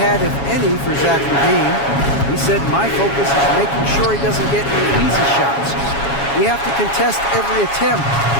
had, if any, for Zach LaVine. He said, my focus is making sure he doesn't get any easy shots. We have to contest every attempt.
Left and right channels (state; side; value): late; right; 7.2 ms